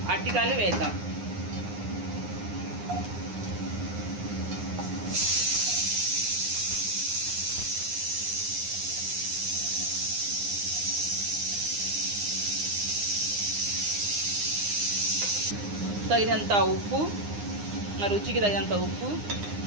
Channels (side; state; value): left; late; 9.7 ms